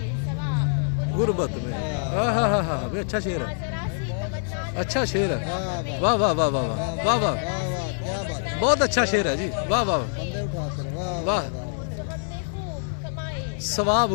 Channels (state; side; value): silent; right; digital silence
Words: सवाब गुर्बत में। अच्छा शेर है, अच्छा शेर है। वाह वाह वाह वाह वाह वाह वाह, बहुत अच्छा शेर है जी। वाह वाह वाह। सवाब